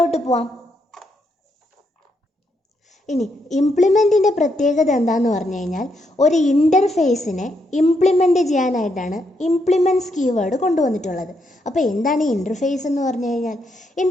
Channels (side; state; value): both; normal; correlation 0.78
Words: പോവാം. ഇനി ഇംപ്ലിമെൻറ്റിൻ്റെ പ്രത്യേകത എന്താണെന്ന് പറഞ്ഞു കഴിഞ്ഞാൽ ഒരു ഇൻ്റർഫേസിനെ ഇംപ്ലിമെൻറ്റ് ചെയ്യാനായിട്ടാണ് ഇംപ്ലിമെൻറ്റ്സ് കീവേഡ് കൊണ്ടുവന്നിട്ടുള്ളത്. അപ്പോൾ എന്താണ് ഈ ഇൻ്റർഫേസ് എന്ന് പറഞ്ഞു കഴിഞ്ഞാൽ?